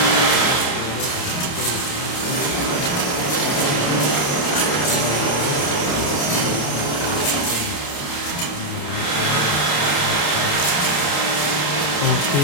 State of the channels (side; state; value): right; late; 28 ms